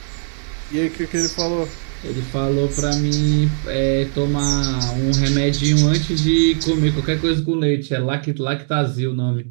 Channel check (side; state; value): left; silent; digital silence